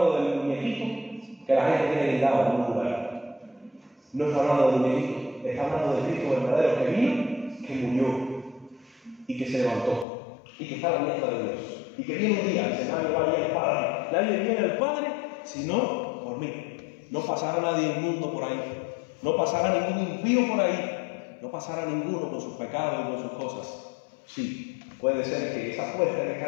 del muñequito que la gente tiene guindado en un lugar. No está hablando del muñequito, está hablando del Cristo verdadero que vino, que murió y que se levantó y que está a la diestra de Dios y que viene un día, se nadie va a ir al Padre. Nadie viene al Padre sino por mí. No pasará nadie inmundo por ahí, no pasará ningún impío por ahí, no pasará ninguno con sus pecados y con sus cosas. Sí, puede ser que esa puerta que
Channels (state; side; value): drops out; right; at 10.1 s